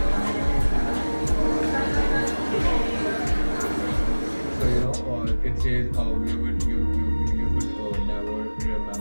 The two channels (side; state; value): both; inverted; correlation -1.00